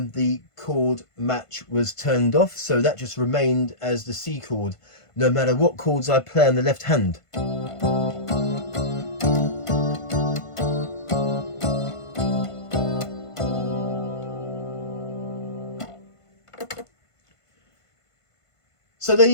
chord match was turned off, so that just remained as the C chord, no matter what chords I play on the left hand. So there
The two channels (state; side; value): late; right; 1.5 ms